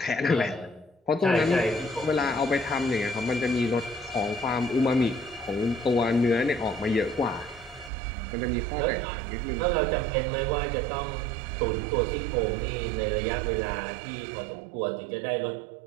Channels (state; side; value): drops out; left; at 7.9 s